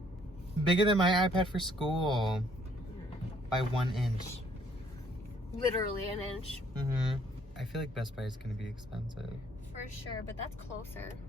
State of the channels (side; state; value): both; normal; correlation 0.64